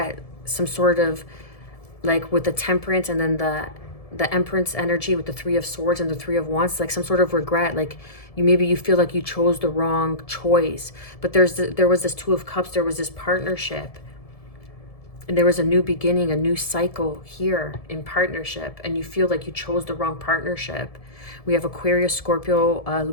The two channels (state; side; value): late; right; 1.7 ms